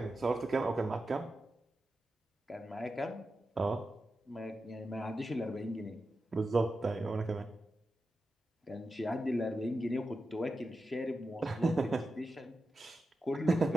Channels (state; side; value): normal; both; correlation 0.90